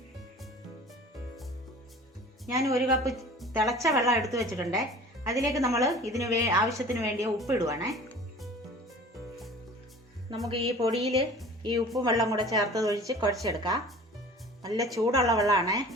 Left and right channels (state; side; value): normal; both; correlation 0.43